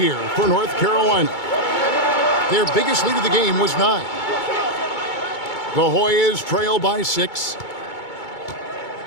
for North Carolina. Their biggest lead of the game was 9. The Hoyas trail by 6.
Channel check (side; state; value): right; late; 2.2 ms